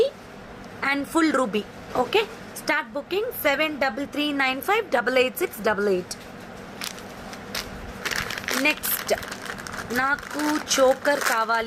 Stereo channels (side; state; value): both; identical; correlation 1.00